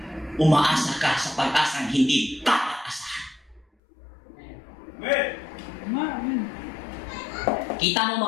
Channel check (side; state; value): right; drops out; at 3.7 s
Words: Umaasa ka sa pag-asang hindi dapat asahan. Kita mo,